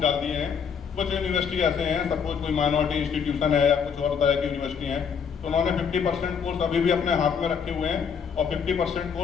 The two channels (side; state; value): right; quieter; 6.7 dB